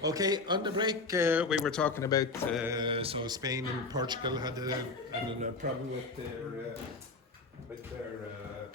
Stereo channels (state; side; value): quieter; right; 3.8 dB